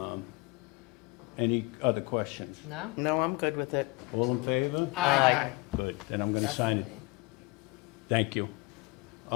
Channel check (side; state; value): right; quieter; 24.2 dB